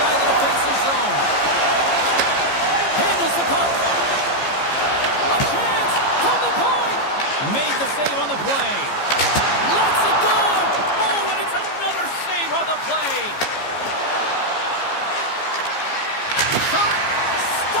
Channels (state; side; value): late; right; 15 ms